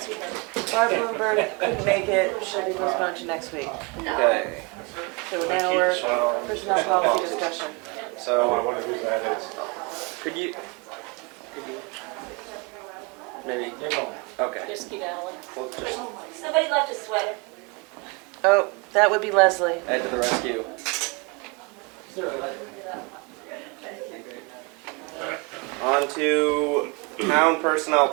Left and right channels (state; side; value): quieter; left; 29.2 dB